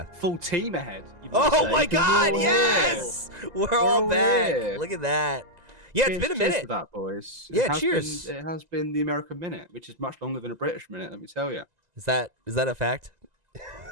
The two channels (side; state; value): left; late; 2.0 ms